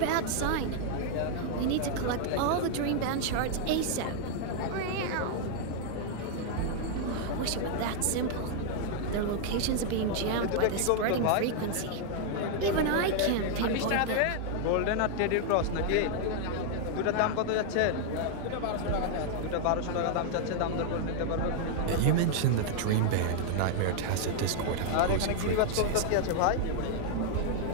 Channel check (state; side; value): different; both; correlation -0.01